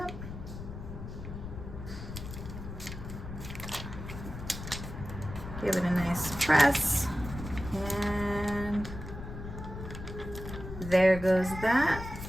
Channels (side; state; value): left; noise; rumble, 9 dB below the sound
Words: Give it a nice press. And there goes that.